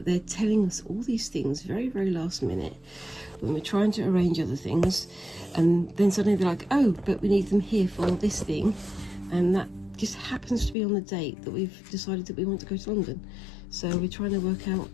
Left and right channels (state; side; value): drops out; right; at 10.8 s